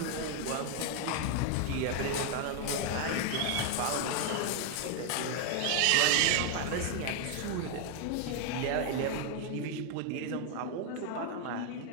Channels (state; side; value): different; both; correlation 0.00